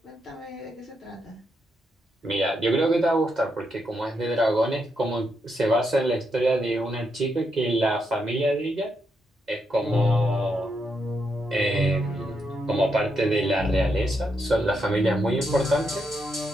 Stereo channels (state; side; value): normal; both; correlation 0.81